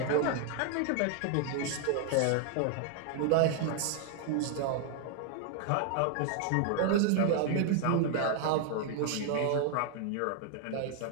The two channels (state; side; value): different; both; correlation 0.00